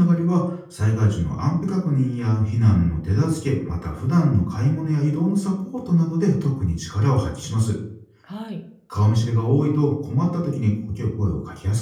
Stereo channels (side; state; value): both; identical; correlation 1.00